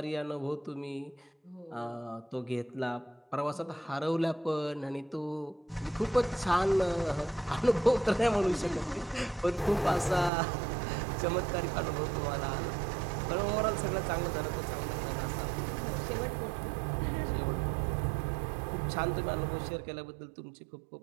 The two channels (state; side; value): drops out; left; at 10.3 s